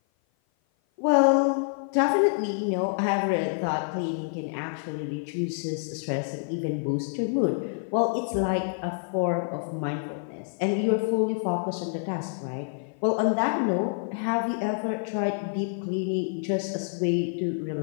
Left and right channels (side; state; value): right; silent; 55 dB below the other